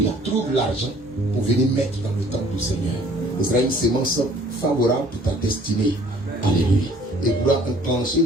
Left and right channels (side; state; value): both; normal; correlation 0.55